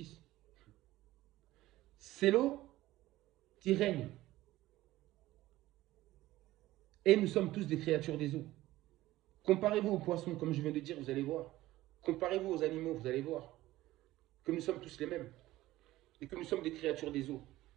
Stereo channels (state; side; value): quieter; left; 16.4 dB